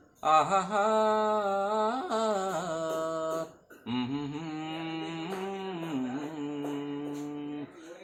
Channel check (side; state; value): both; identical; correlation 1.00